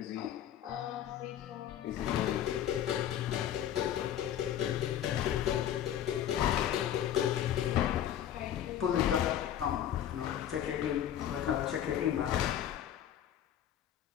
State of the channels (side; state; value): right; quieter; 10.6 dB